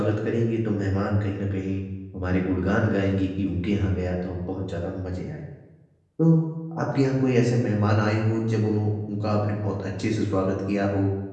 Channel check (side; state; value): both; identical; correlation 1.00